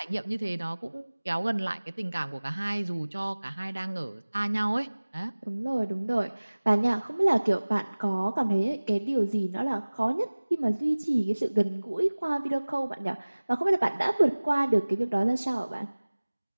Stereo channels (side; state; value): both; inverted; correlation -1.00